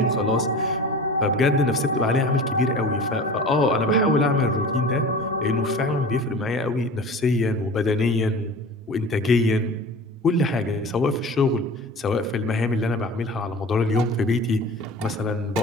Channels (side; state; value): both; normal; correlation 0.37